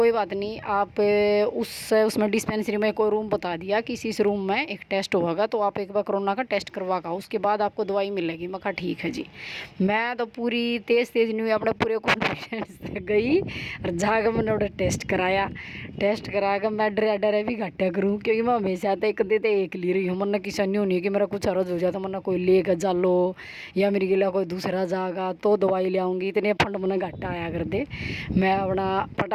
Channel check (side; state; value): both; identical; correlation 1.00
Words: बात नहीं, आप उसमें डिस्पेंसरी में कोई रूम बता दिया कि इस रूम में एक टेस्ट होगा तो आप एक बार कोरोना का टेस्ट करवा का उसके बाद आपको दवाई मिलेगी। मैं कहा ठीक है जी। मैं तो पूरी तेज़ नहीं अपने पूरे कॉन्फिडेंस से गई और जाकर मैंने उधर टेस्ट कराया। टेस्ट करा कर मैं डरे भी घट्टा करूँ, क्योंकि मैं हमेशा तो एक देते एक ले रही हूँ। मैंने किसी नहीं होनी कि मेरा कुछ अर्ज हो जाता मैंने कोई ले कर जा लो या मेरी गिला कोई दूसरा जाएगा तो दवाई ले आऊँगी, इतने फंड मैंने घट्टा आया कर दे। मैं अपना